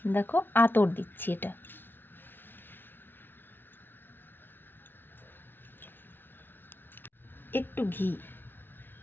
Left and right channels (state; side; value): late; right; 0.10 ms